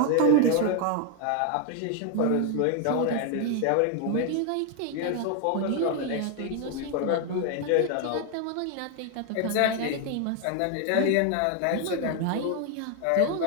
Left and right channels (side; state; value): both; different; correlation 0.00